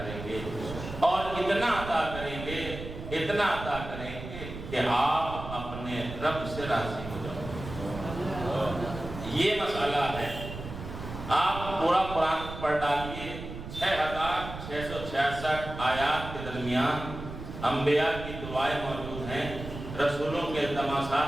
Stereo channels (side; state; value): right; noise; rumble, 10 dB below the sound